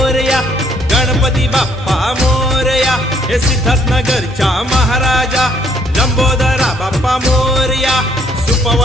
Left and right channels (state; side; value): normal; both; correlation 0.66